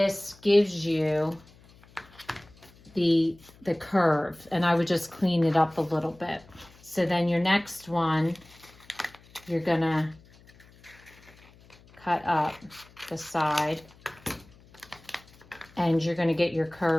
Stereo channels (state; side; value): noise; left; hum, 26 dB below the sound